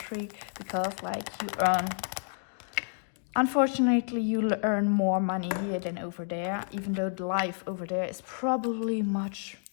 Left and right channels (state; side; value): silent; right; digital silence